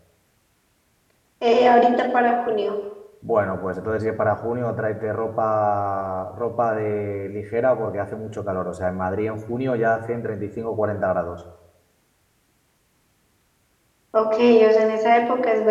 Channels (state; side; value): identical; both; correlation 1.00